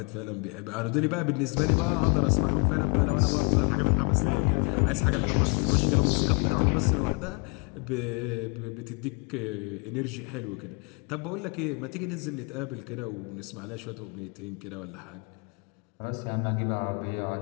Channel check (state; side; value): quieter; right; 33.4 dB